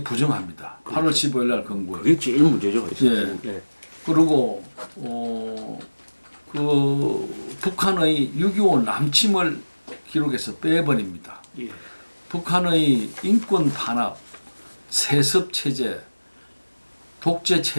부정합니다. 그렇죠. 8월 15일 날 건국. 그게 제일 문제죠. 예. 그리고 그 북한의 6.25 남침을 기록해서 빼버립니다. 예. 북한의 인권 탄압, 세습 체제, 독재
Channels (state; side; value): inverted; both; correlation -1.00